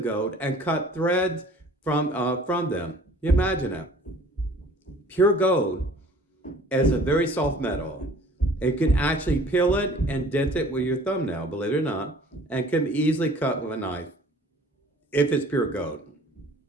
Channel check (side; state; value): both; normal; correlation 0.50